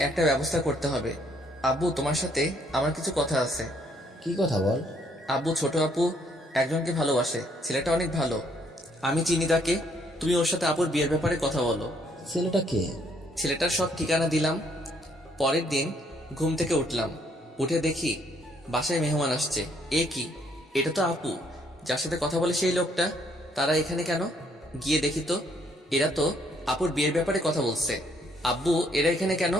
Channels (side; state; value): both; normal; correlation 0.68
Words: একটা ব্যবস্থা করতে হবে। আব্বু, তোমার সাথে আমার কিছু কথা আছে। কি কথা বল? আব্বু, ছোট আপু একজনকে ভালোবাসে, ছেলেটা অনেক ভালো। আমি চিনি তাকে। তুমি ওর সাথে আপুর বিয়ের ব্যাপারে কথা বলো। ছেলেটা কে? ছেলেটার সব ঠিকানা দিলাম। পরের দিন ঘুম থেকে উঠলাম, উঠে দেখি বাসায় মেহমান আসছে। এ কি, এটা তো আপু যার সাথে কথা বলে সেই লোকটা। তারা এখানে কেন? গিয়ে দেখি তো, এরা তো আপুর বিয়ের ব্যাপারে কথা বলছে। আব্বু, এরা এখানে কেন?